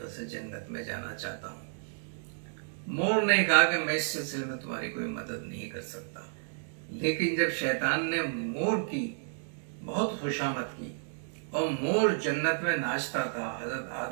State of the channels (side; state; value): left; silent; digital silence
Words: سے جنت میں جانا چاہتا ہوں۔ مور نے کہا کہ میں اس سلسلے میں تمہاری کوئی مدد نہیں کر سکتا، لیکن جب شیطان نے مور کی بہت خوشامد کی اور مور جنت میں ناچتا تھا، حضرت